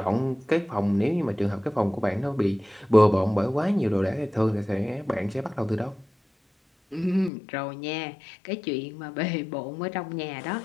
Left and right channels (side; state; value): right; drops out; at 7.3 s